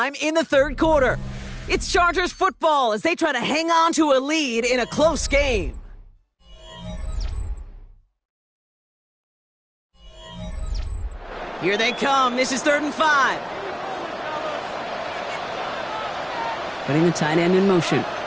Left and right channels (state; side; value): identical; both; correlation 1.00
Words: in the 3rd quarter. It's Chargers football as they try to hang on to a lead in a close game. Here they come. This is 3rd and 5. Putting the tight end in motion.